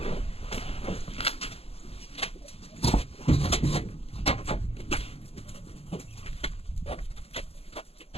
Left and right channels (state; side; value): late; right; 0.29 ms